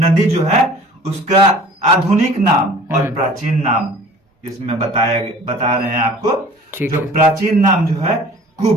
जो है उसका आधुनिक नाम और प्राचीन नाम इसमें बता रहे हैं आपको। जो प्राचीन नाम जो है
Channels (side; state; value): both; normal; correlation 0.47